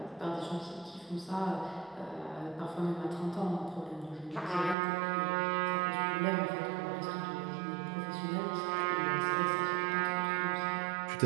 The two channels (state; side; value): drops out; left; at 4.8 s